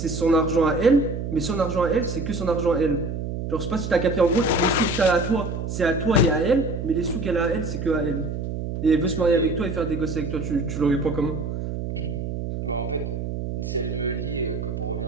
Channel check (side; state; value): right; noise; hum, 4 dB below the sound